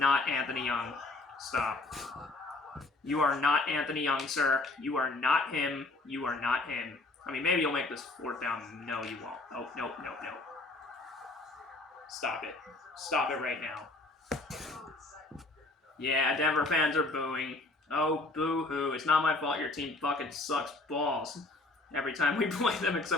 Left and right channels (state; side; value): quieter; right; 3.1 dB